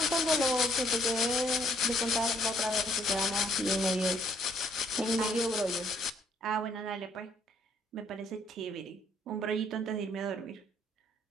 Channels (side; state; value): both; normal; correlation 0.66